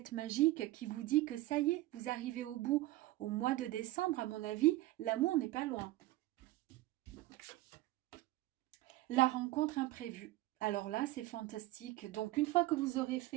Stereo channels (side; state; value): left; quieter; 17.7 dB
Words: magique qui vous dit que ça y est, vous arrivez au bout. Au mois de décembre, à mon avis, l'amour n'est pas loin. La rencontre imprévue. Alors là, c'est fantastique. Donc, une fois que vous aurez